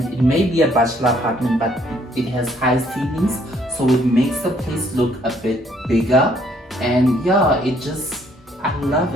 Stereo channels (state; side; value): normal; both; correlation 0.65